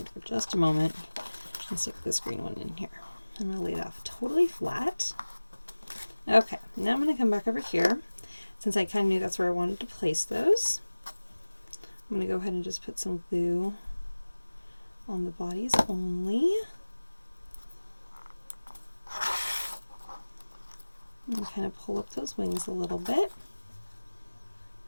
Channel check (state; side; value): inverted; both; correlation -1.00